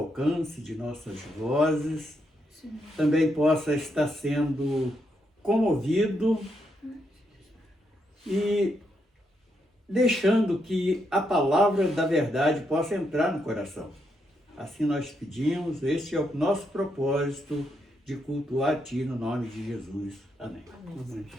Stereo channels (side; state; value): both; normal; correlation 0.80